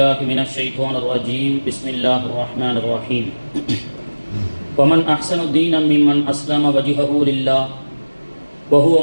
من الشيطان الرجيم بسم الله الرحمن الرحيم. ومن أحسن دينا ممن أسلم وجهه لله وهو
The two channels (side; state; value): both; inverted; correlation -1.00